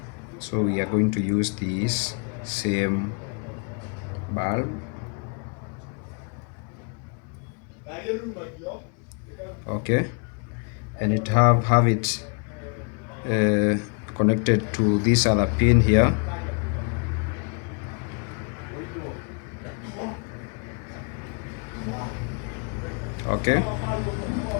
So we are going to use this same bulb. Okay, and it have it connected to this other pin here. Okay,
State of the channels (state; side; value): quieter; right; 38.9 dB